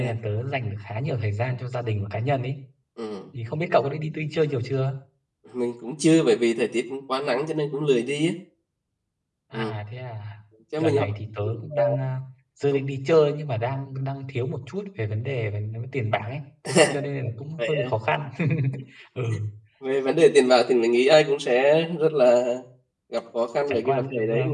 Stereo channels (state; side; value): identical; both; correlation 1.00